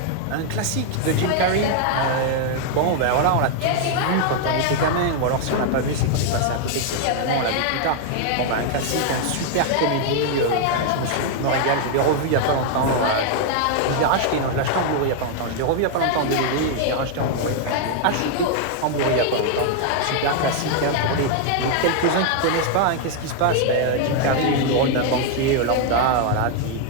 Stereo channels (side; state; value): both; different; correlation 0.00